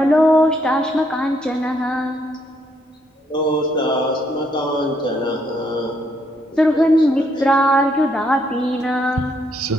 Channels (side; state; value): both; normal; correlation 0.73